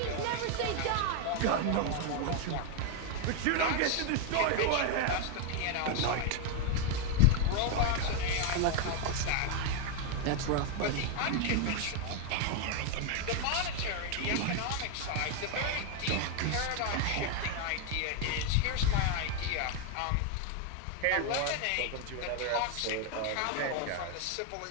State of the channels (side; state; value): both; different; correlation 0.01